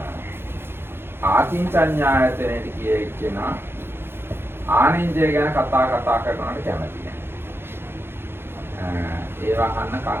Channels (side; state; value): left; late; 0.11 ms